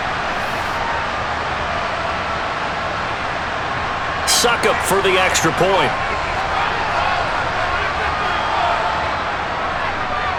Suck up for the extra point.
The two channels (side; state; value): both; identical; correlation 1.00